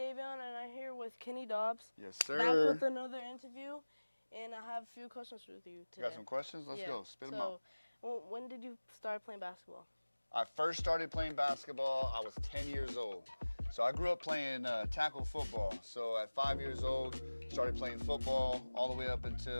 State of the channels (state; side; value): inverted; both; correlation -1.00